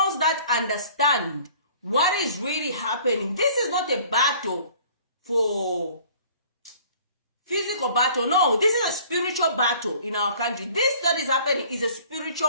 that understand what is really happening. This is not a battle for physical battle. No, this is a spiritual battle in our country. This that is happening is a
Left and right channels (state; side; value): inverted; both; correlation -0.52